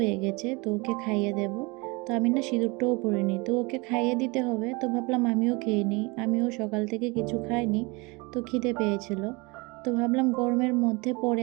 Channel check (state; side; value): quieter; left; 26.9 dB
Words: গেছে, তো ওকে খাইয়ে দেব। তো আমি না সিঁদুরটাও পরিনি, তো ওকে খাইয়ে দিতে হবে। তো ভাবলাম আমিও খেয়ে নিই, আমিও সকাল থেকে কিছু খাইনি, তো খিদে পেয়েছিল। তো ভাবলাম গরমের মধ্যে পরে